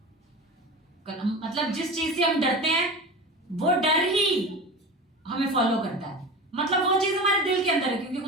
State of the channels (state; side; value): normal; both; correlation 0.30